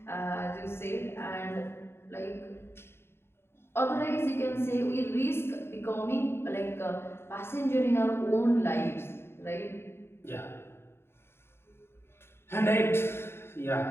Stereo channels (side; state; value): right; late; 0.12 ms